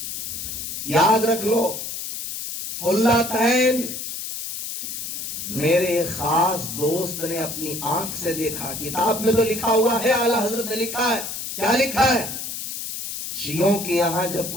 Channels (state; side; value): noise; left; hiss, 6 dB below the sound